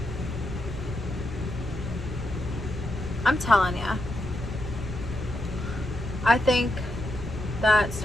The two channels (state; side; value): normal; both; correlation 0.83